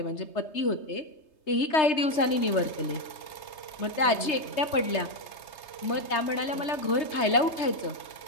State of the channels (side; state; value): right; late; 3.3 ms